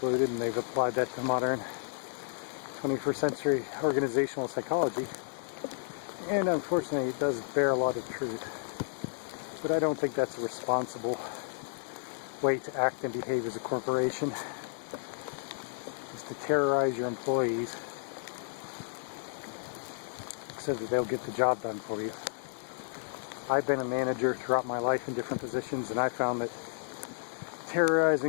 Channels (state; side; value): silent; right; digital silence